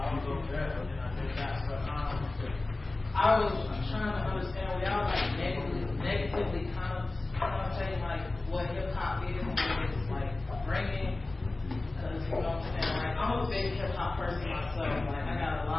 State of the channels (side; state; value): right; quieter; 3.1 dB